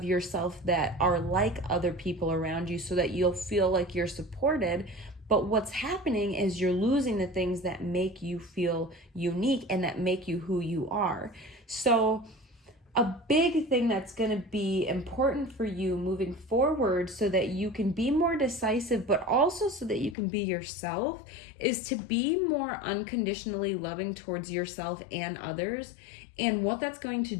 yourself that are like other people around you so that you'll feel like you're supported. But what's happening is you're losing the things that make you feel unique and that make you who you are. So a big thing that's going to be important for you moving forward so that you can be more decisive, but also so that you can be yourself, is to be more unconditionally loving towards yourself and others. And what that's going to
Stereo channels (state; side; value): drops out; right; at 20.2 s